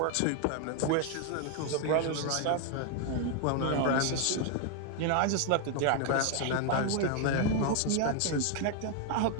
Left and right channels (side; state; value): both; different; correlation 0.01